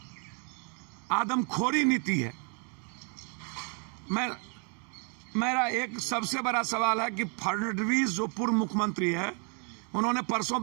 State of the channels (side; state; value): left; quieter; 38.7 dB